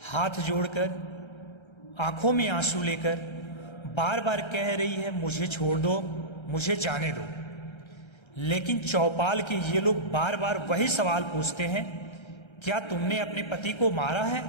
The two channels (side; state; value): right; late; 1.3 ms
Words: हाथ जोड़कर, आंखों में आंसू लेकर बार बार कह रही है, मुझे छोड़ दो, मुझे जाने दो। लेकिन चौपाल के ये लोग बार बार वही सवाल पूछते हैं, क्या तुमने अपने पति को मारा है?